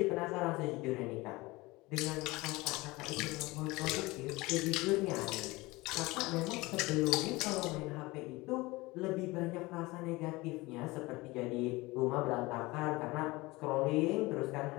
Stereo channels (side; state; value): right; quieter; 21.8 dB